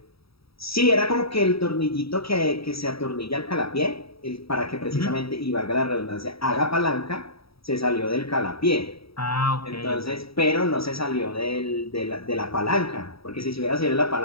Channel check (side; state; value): right; late; 0.76 ms